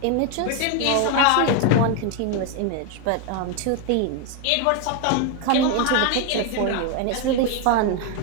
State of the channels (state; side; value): different; both; correlation 0.01